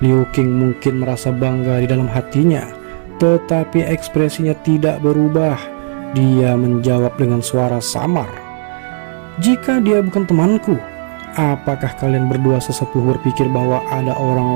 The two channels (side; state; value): left; silent; 60 dB below the other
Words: Liu Qing mungkin merasa bangga di dalam hatinya, tetapi ekspresinya tidak berubah. Dia menjawab dengan suara samar, jika dia bukan temanku, apakah kalian berdua sesepuh berpikir bahwa ada orang